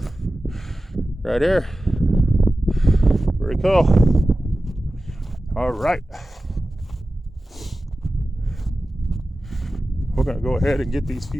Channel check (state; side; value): normal; both; correlation 0.95